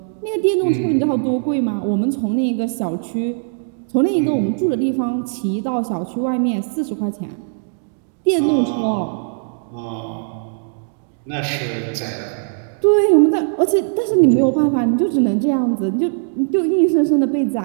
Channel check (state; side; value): silent; left; digital silence